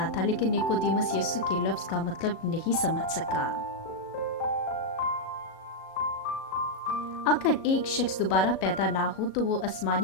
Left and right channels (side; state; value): right; late; 37 ms